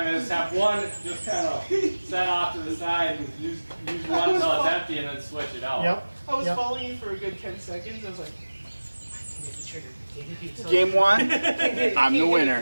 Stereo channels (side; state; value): both; inverted; correlation -1.00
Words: is have one just kind of set off to the side and use one until it's empty and then switch it out. Yep. I was Yep. following you for a good 10 seconds. I was like, Hit the trigger. Can't hit the Game one, Can't hit it, I'm the can't hit it, winner.